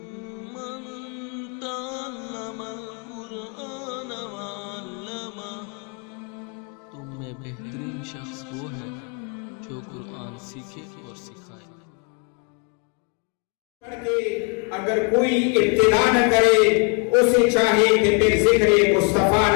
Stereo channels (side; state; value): right; quieter; 36.1 dB